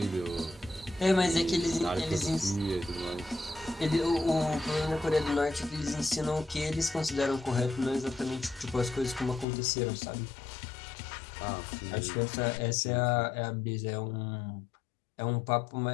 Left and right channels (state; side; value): drops out; right; at 9.5 s